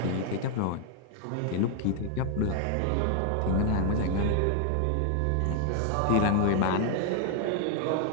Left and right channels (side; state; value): both; different; correlation 0.00